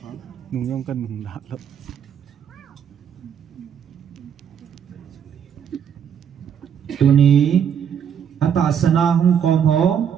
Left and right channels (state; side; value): quieter; left; 8.2 dB